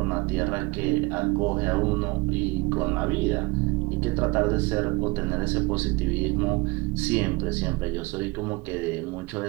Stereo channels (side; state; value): left; quieter; 24.2 dB